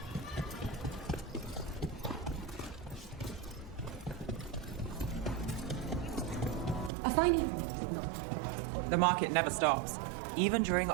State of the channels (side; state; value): left; drops out; at 6.9 s